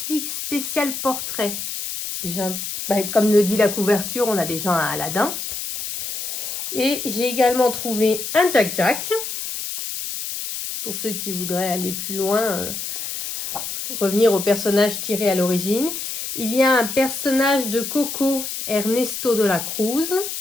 spécial portrait, comme le dit la couverture, on a déjà un Aladin. Et j'ai également trouvé un Jack Jack. Pour ceux qui voudraient aller plus loin, revenir au personnage tiré à l'origine. Il y a un personnage de Coco, Ernesto de la Cruz.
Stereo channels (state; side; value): noise; left; hiss, 5 dB below the sound